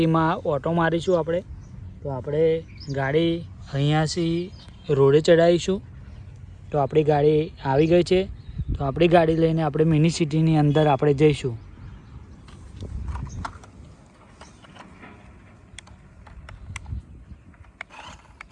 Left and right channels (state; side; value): identical; both; correlation 1.00